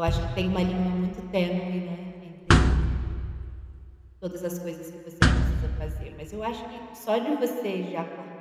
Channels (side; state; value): both; identical; correlation 1.00